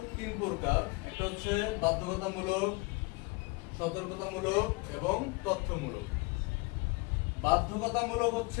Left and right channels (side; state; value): right; quieter; 26.1 dB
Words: তিন প্রকার। একটা হচ্ছে বাধ্যকতামূলক, সতর্কতামূলক এবং তথ্যমূলক। বাধ্যকতামূলক